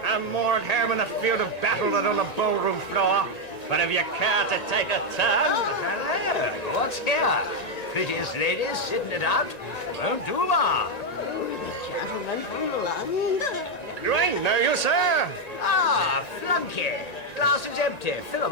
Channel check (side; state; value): right; late; 1.9 ms